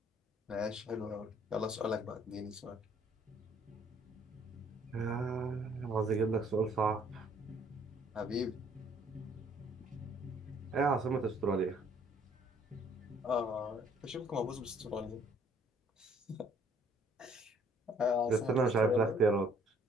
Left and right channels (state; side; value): normal; both; correlation 0.61